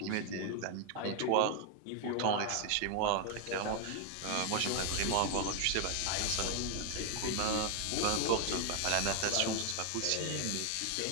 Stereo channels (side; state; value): both; different; correlation 0.01